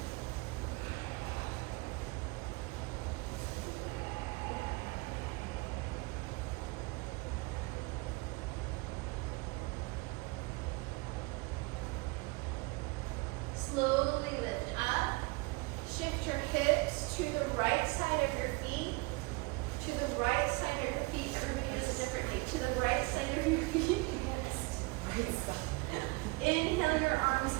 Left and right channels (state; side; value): quieter; left; 25.6 dB